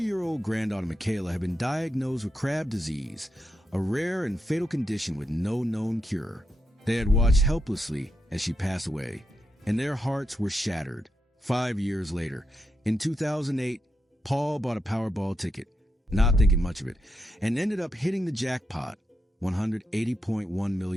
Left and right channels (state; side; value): normal; both; correlation 0.85